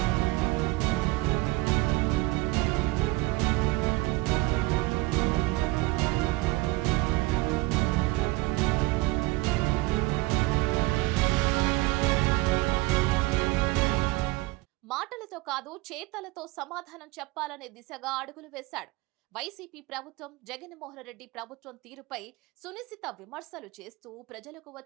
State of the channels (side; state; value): left; quieter; 21.8 dB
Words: మాటలతో కాదు, చేతలతో సమాధానం చెప్పాలనే దిశగా అడుగులు వేశాడు. వైసీపీ ప్రభుత్వం, జగన్మోహన్ రెడ్డి ప్రభుత్వం తీరుపై సునిశిత విమర్శలు చేస్తూ ప్రజలకు